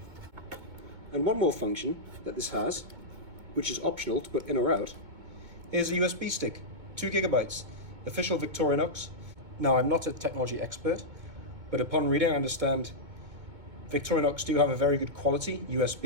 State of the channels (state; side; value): late; left; 2.2 ms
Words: And one more function that this has, which is optional to put in or out, is a USB stick, 2 gigabytes, official Victorinox. Now, I'm not a technology expert, but upon reading, I understand Victorinox do have a very good quality